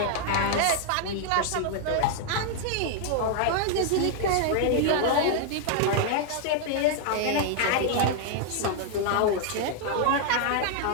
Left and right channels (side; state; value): both; different; correlation 0.00